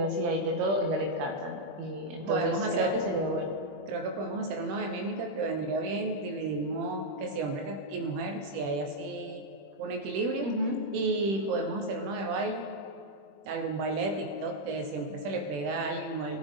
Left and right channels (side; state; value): left; late; 21 ms